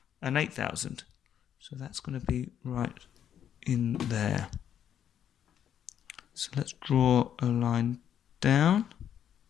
and 8,000. So that's going to be right in there. So let's draw a line down.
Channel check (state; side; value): quieter; right; 9.5 dB